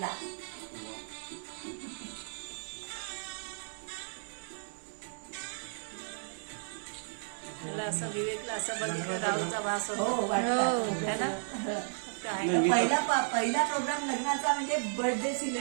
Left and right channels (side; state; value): left; silent; 55 dB below the other